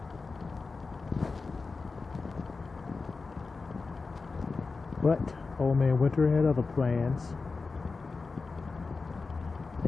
But old man Winter had other plans.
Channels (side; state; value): right; quieter; 4.2 dB